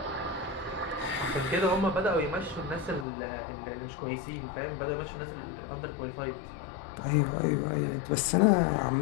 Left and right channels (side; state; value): right; drops out; at 3.1 s